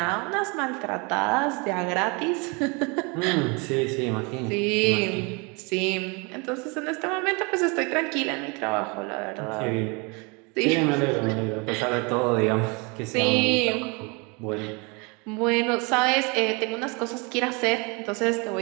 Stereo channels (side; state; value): left; quieter; 30.0 dB